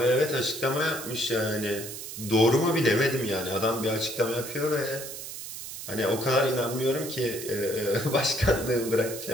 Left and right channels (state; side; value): noise; right; hiss, 10 dB below the sound